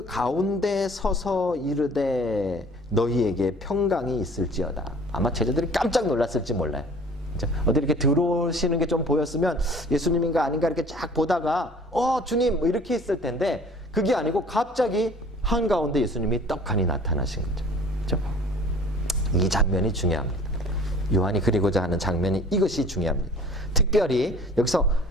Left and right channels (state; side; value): normal; both; correlation 0.48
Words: 가운데 서서 이르되 너희에게 평강이 있을지어다. 아마 제자들이 깜짝 놀랐을지 몰라요. 어디 이렇게 들어오시는 게 좀 보였으면 예수님인가 아닌가 이렇게 쫙 보다가 주님 뭐 이렇게 했을 텐데 그게 아니고 갑자기 한가운데 예수님이 떡하니 나타나신 거죠. 그렇죠? 이 장면이 중요합니다. 요한이 그리고자 하는 장면이 이것이 중요합니다. 특별히 여기서